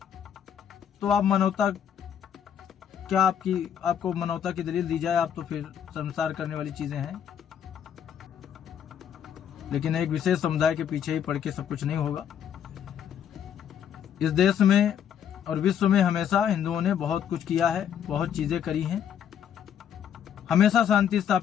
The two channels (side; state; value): right; quieter; 8.9 dB